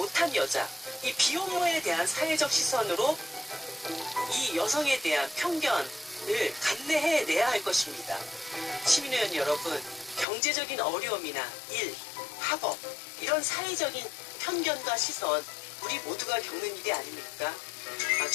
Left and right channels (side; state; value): right; drops out; at 10.2 s